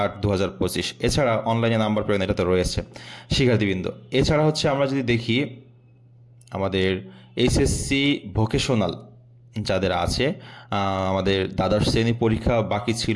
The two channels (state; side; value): identical; both; correlation 1.00